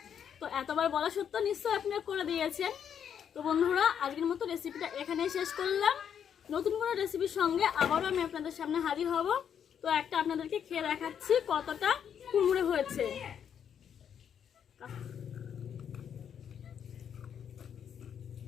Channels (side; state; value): right; quieter; 8.3 dB